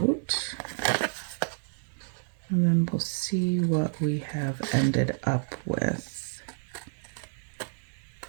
And then we'll see what we have ended up with.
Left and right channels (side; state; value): left; silent; 58 dB below the other